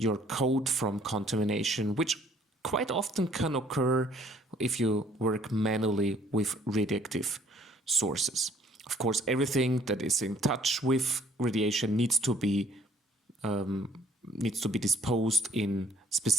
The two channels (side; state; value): both; normal; correlation 0.60